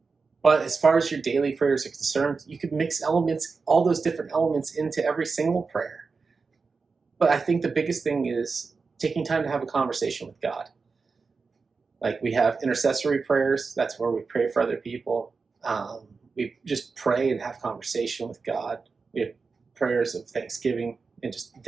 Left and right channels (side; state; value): left; quieter; 4.6 dB